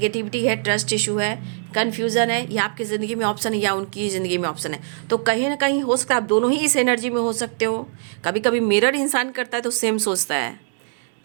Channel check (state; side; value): silent; left; digital silence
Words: है, ट्रस्ट इशू है, कन्फ्यूज़न है, या आपकी ज़िंदगी में ऑप्शन है या उनकी ज़िंदगी में ऑप्शन है। तो कहीं ना कहीं हो सकता है आप दोनों ही इस एनर्जी में हो सकते हो। कभी कभी मिरर इंसान करता है तो सेम सोचता है,